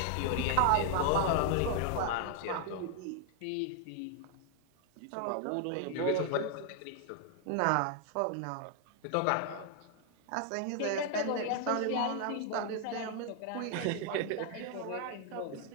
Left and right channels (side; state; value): both; different; correlation 0.00